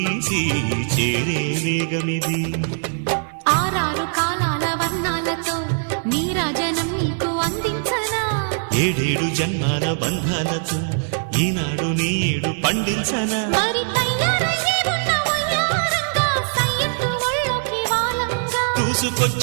చేరే వేగమిది. ఆరారు కాలాల వర్ణాలతో నీరాజనం నీకు అందించనా, ఏడేడు జన్మాల బంధాలతో ఈనాడు నీ ఏడు పండించనా. మరి తయారయ్యే ఉన్న వయ్యారంగా సయ్యత్తు ఒళ్ళోకి వాలంగా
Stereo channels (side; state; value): left; silent; digital silence